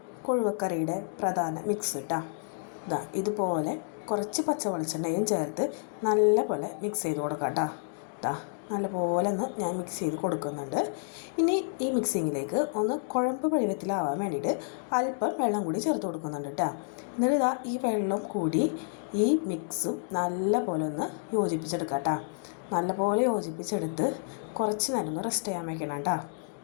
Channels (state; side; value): silent; right; digital silence